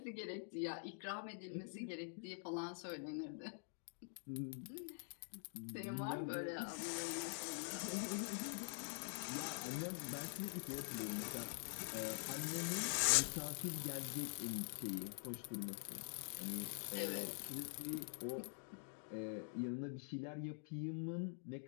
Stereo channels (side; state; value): right; silent; digital silence